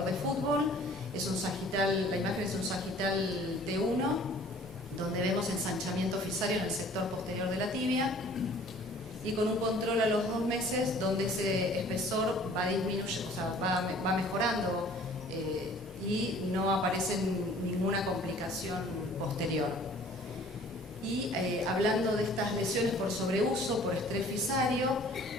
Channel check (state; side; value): normal; both; correlation 0.52